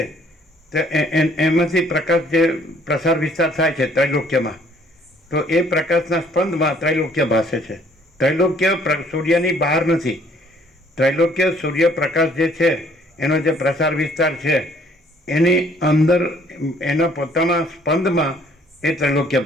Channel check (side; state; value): both; normal; correlation 0.61